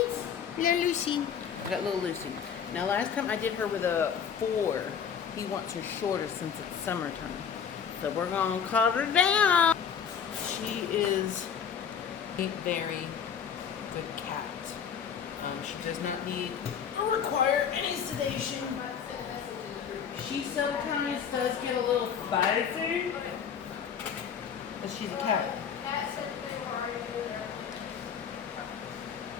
Little Lucy. I got little Lucy. Now last time I did her with a 4. He wants her shorter since it's summertime. So we're going to cut her down. She is a very good cat. She does not need or require any sedation. She sometimes does get a little spicy, but she's a cat.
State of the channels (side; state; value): right; quieter; 7.6 dB